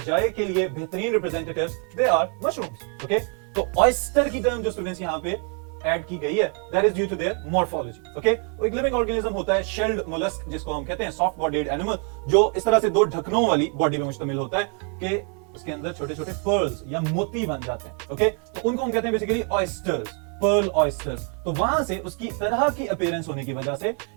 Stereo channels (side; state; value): left; quieter; 39.6 dB